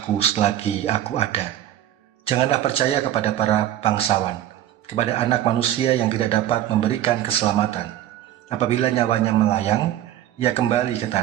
selagi aku ada. Janganlah percaya kepada para bangsawan, kepada anak manusia yang tidak dapat memberikan keselamatan. Apabila nyawanya melayang, ia kembali ke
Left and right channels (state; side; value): quieter; left; 12.5 dB